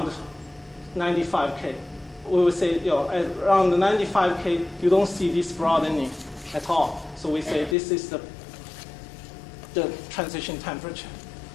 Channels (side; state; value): right; drops out; at 7.8 s